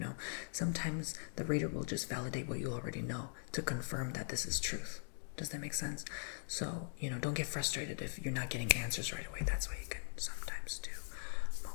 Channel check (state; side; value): silent; right; digital silence